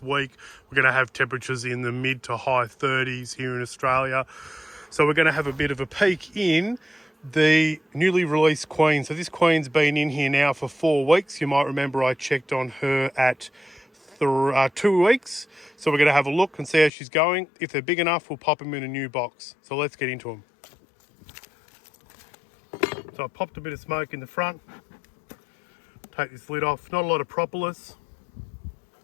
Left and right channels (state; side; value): drops out; right; at 16.9 s